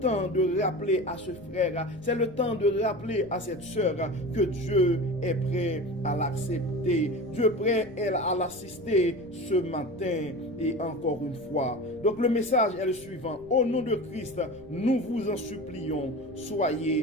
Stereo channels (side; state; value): right; noise; rumble, 22 dB below the sound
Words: de rappeler à ce frère, c'est le temps de rappeler à cette soeur que Dieu est prêt à l'accepter. Dieu est prêt à l'assister ce matin et encore une fois. Donc le message est le suivant. Au nom de Christ, nous vous en supplions,